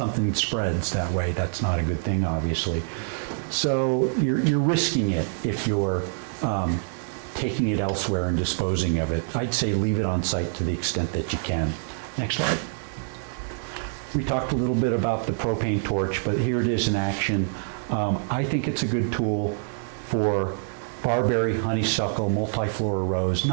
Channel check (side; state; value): left; silent; digital silence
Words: spreads that way, that's not a good thing, obviously. So you're risking it if you're taking it elsewhere and disposing of it. I'd say leave it on site to the extent that you can. Next slide. We talked a little bit about the propane torch, but here it is in action. I think it's a good tool for barberry, honeysuckle, multiflora rose.